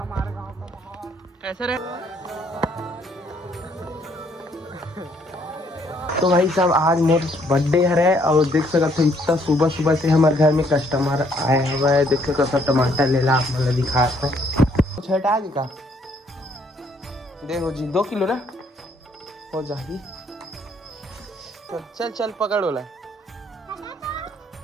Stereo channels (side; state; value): both; normal; correlation 0.67